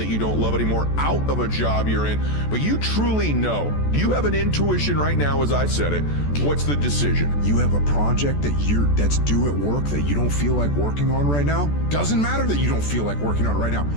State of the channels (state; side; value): late; right; 14 ms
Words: you don't love anymore, out of a job you're in. But you truly know, you have an intuition right now, as I said it. What's the decision? You have a project that's due at work that you don't feel like working on right now. Doesn't matter that you don't feel like working on it right now.